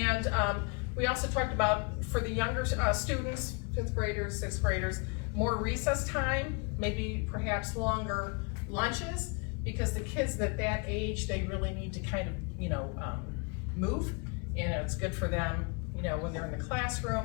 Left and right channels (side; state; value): right; quieter; 33.1 dB